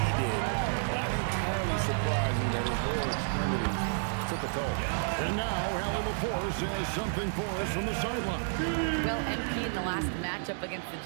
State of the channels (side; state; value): left; silent; digital silence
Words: did, not entirely surprising that his lower extremities took a toll. And now, Allie LaForce has something for us from the sideline. Well, MP in the last matchup against the